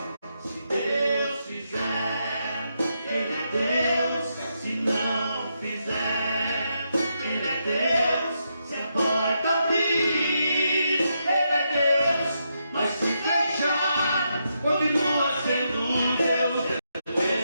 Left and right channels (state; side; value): inverted; both; correlation -0.82